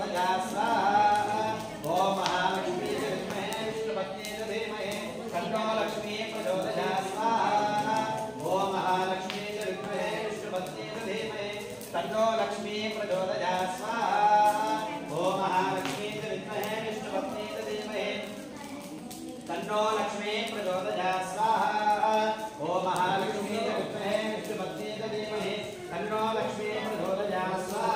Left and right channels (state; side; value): identical; both; correlation 1.00